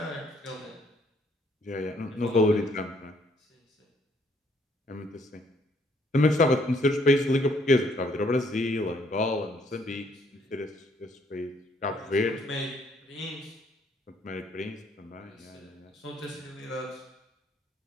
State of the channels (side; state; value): both; normal; correlation 0.67